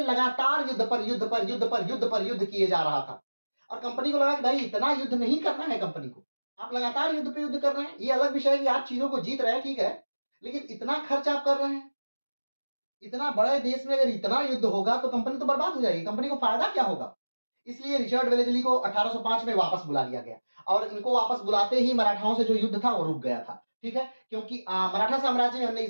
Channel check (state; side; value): inverted; both; correlation -1.00